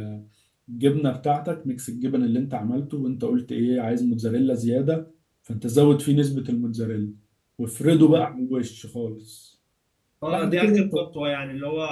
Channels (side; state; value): both; identical; correlation 1.00